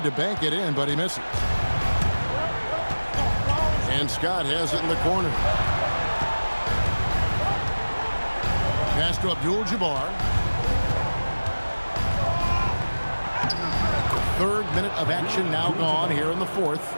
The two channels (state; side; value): inverted; both; correlation -1.00